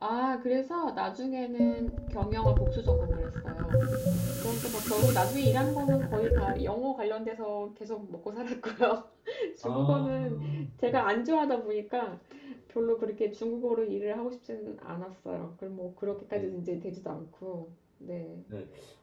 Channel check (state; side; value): identical; both; correlation 1.00